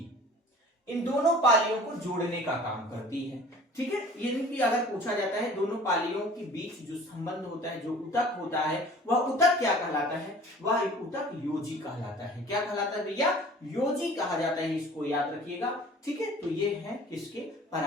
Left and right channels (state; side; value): normal; both; correlation 0.46